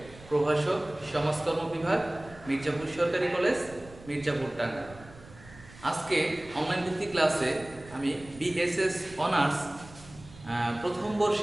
প্রভাষক, সমাজকর্ম বিভাগ, মির্জাপুর সরকারি কলেজ, মির্জাপুর টাঙ্গাইল। আজকে অনলাইন ভিত্তিক ক্লাসে আমি বিএসএস অনার্স প্রথম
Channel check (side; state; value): right; noise; rumble, 20 dB below the sound